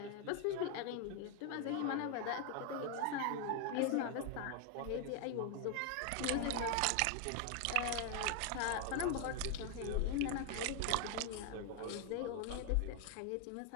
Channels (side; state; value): both; different; correlation 0.01